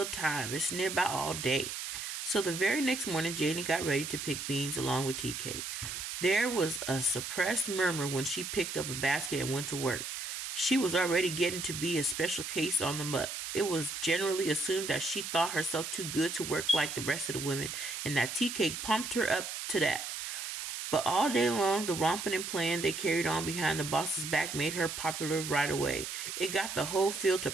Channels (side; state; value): right; noise; hiss, 5 dB below the sound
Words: time. It's nearby all day. So the very next morning, Janie got ready to pick beans along with Tea Cake. There was a suppressed murmur when she picked up a basket and went to work. She was already getting to be a special case on the muck. It was generally assumed that she thought herself too good to work like the rest of the women, and that Tea Cake pumped her up to that. But all day long, the romping and playing they carried on behind the boss's back made her popular right away. It got the whole field to